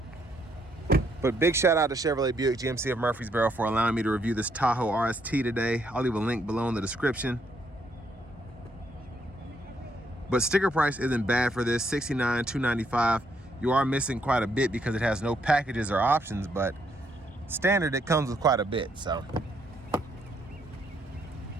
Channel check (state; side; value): normal; both; correlation 0.73